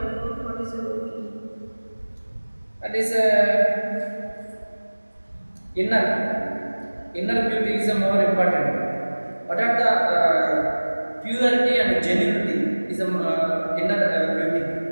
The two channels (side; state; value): both; inverted; correlation -1.00